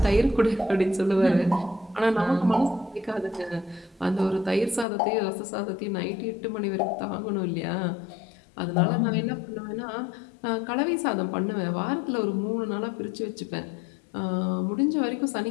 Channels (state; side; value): drops out; right; at 4.9 s